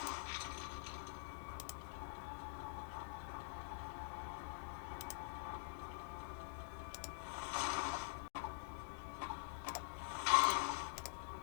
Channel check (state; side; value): silent; right; digital silence